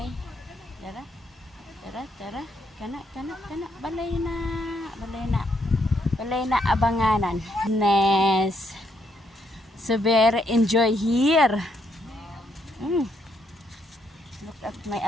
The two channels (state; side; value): normal; both; correlation 0.75